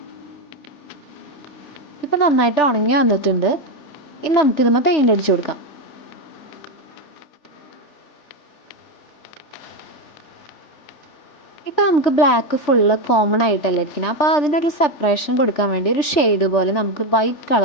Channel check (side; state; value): right; late; 3.4 ms